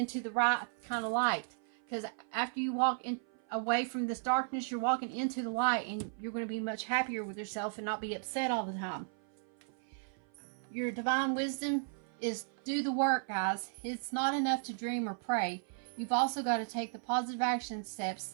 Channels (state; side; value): silent; left; 54 dB below the other